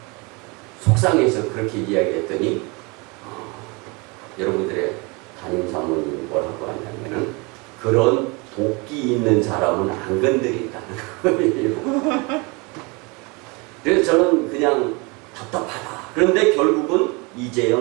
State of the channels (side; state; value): left; quieter; 28.3 dB